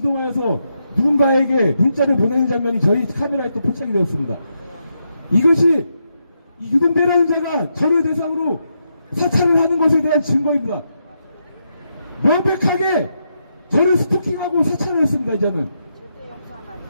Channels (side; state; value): both; inverted; correlation -0.82